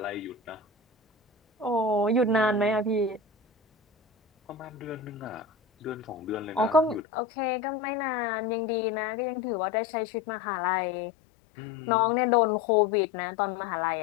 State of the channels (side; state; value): right; drops out; at 7.0 s